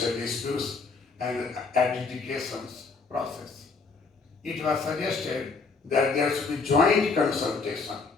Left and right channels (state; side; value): quieter; right; 4.4 dB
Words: disputes and adjudications process. It was suggested that there should be joint consultation